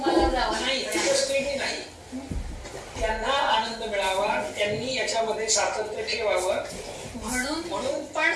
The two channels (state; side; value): identical; both; correlation 1.00